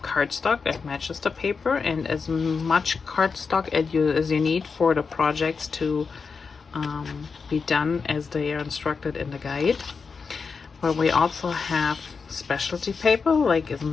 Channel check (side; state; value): right; quieter; 5.2 dB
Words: cardstock that matches the paper and as much cardstock as you need for the projects to be done as they are instructed in the guide, but we also have specialty paper. Like, isn't